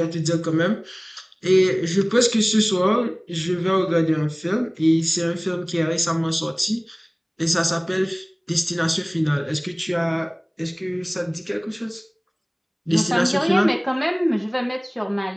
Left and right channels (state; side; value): identical; both; correlation 1.00